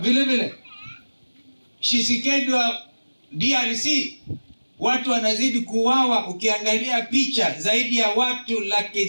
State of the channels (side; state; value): both; inverted; correlation -1.00